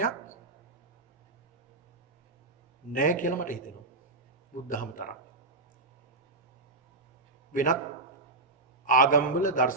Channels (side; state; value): left; quieter; 3.1 dB